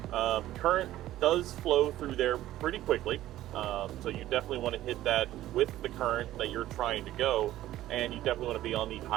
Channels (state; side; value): quieter; left; 14.2 dB